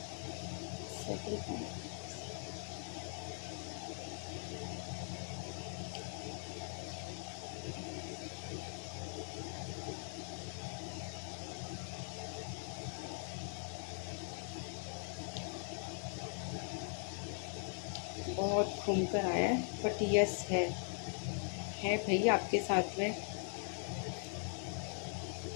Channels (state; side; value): silent; right; 50 dB below the other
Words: सेकंड पाइल, बहुत घूम कर आया है, बट यस है भाई आपके साथ में।